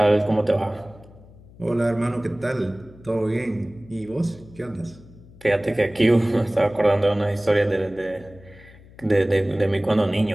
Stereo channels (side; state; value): left; noise; hum, 22 dB below the sound